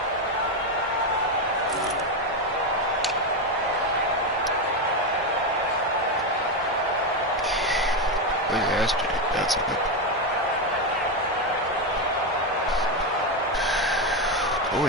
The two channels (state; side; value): normal; both; correlation 0.09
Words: Where's Astrid? That's a good. I